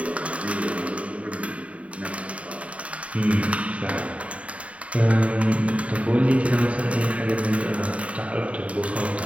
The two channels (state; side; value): late; left; 0.065 ms